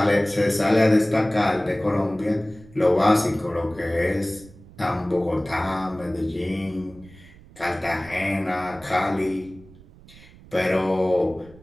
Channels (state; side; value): noise; right; rumble, 22 dB below the sound